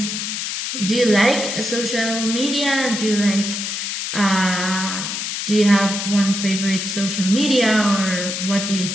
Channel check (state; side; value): noise; left; hiss, 3 dB below the sound